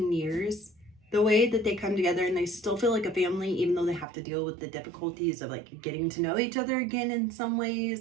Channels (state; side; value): drops out; left; at 4.0 s